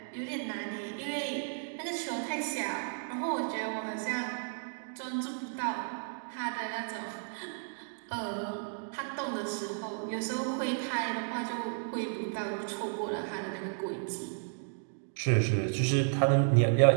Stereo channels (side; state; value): left; silent; digital silence